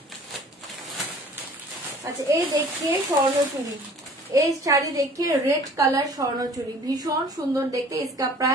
আচ্ছা এই দেখিয়ে স্বর্ণচুরি, এই শাড়ি देखिए रेड कलर स्वर्णचूड़ी भीषण सुंदर देखते। इसका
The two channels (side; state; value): both; normal; correlation 0.49